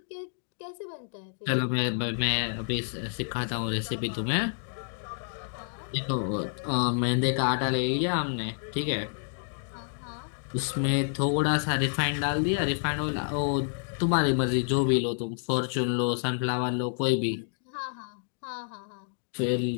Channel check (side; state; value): right; silent; digital silence